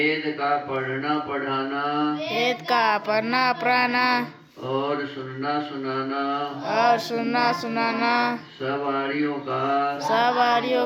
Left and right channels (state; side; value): identical; both; correlation 1.00